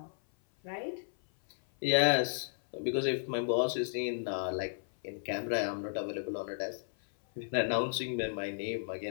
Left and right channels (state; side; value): silent; right; 55 dB below the other